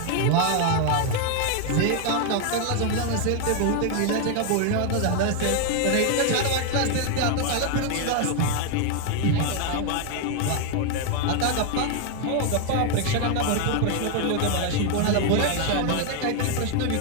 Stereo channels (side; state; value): both; different; correlation 0.00